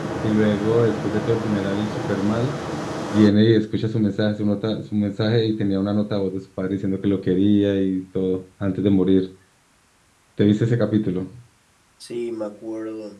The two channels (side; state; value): both; identical; correlation 1.00